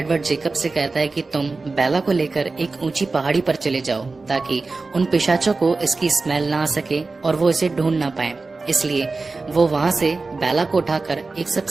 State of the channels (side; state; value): left; quieter; 3.8 dB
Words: जेकब से कहता है कि तुम बेला को लेकर एक ऊंची पहाड़ी पर चले जाओ, ताकि उन पिशाचों को इसकी स्मेल ना आ सके और वो इसे ढूंढ ना पाए। इसलिए वो वहाँ से बेला को उठाकर एक